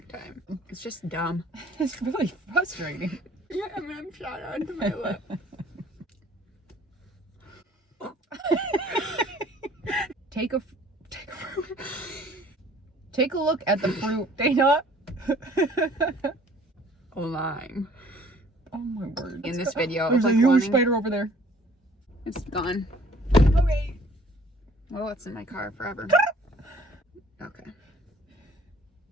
time. It's just dumb. It's really frustrating. My M&M shot onto my lip. Take a look at the fruit, Dana. A lime. Oh my word. In this video, There's it's a like huge spider over there. It's gone. Okay. Well, it's in my car forever. Okay.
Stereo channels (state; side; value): normal; both; correlation 0.55